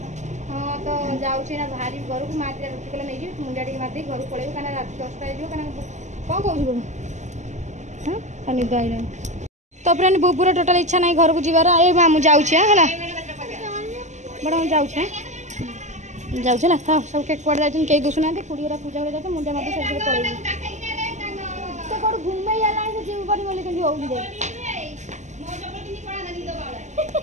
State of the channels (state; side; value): late; left; 0.34 ms